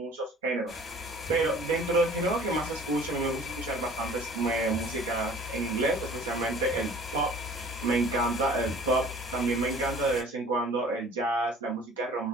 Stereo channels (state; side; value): normal; both; correlation 0.49